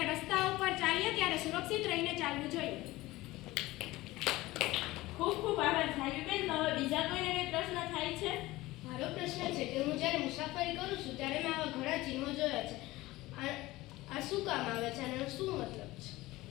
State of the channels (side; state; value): right; quieter; 18.7 dB